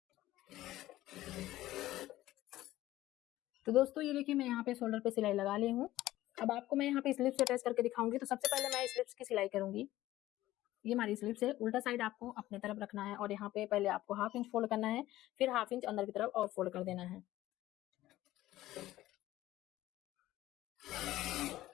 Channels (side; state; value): right; quieter; 15.5 dB